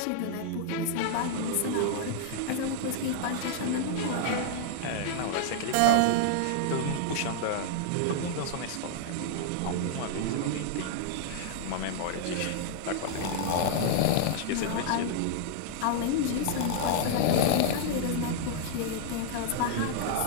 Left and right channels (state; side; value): different; both; correlation -0.01